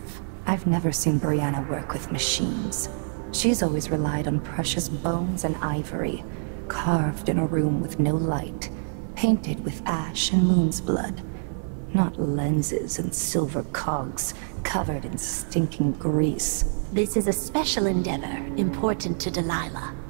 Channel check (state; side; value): silent; left; digital silence